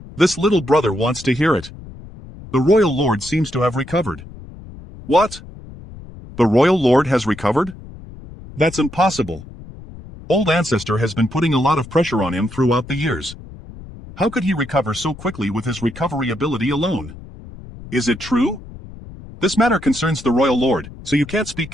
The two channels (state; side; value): noise; left; rumble, 16 dB below the sound